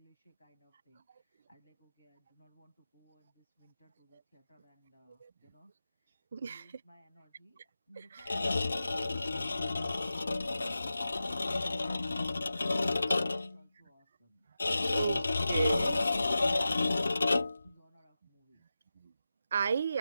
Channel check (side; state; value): both; inverted; correlation -0.92